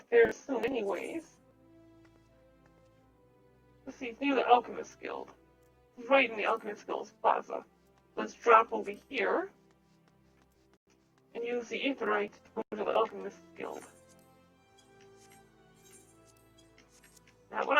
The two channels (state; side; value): identical; both; correlation 1.00